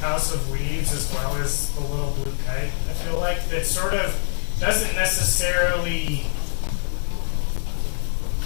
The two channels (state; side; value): silent; right; digital silence